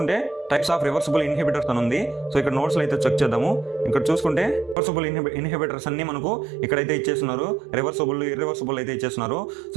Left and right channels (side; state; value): left; drops out; at 4.8 s